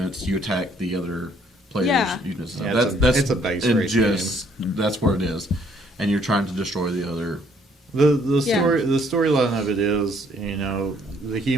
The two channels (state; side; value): normal; both; correlation 0.65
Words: you attack the other players' Yeah. units. Yeah, it's a base and race just that's what it is, and you're trying to destroy the other. The Yeah. storyline of it is, you know, the